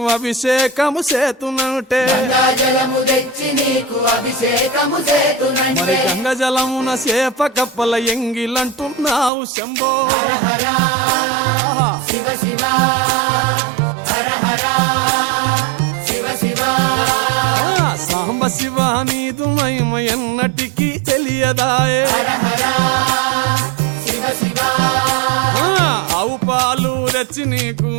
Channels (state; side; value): drops out; left; at 9.3 s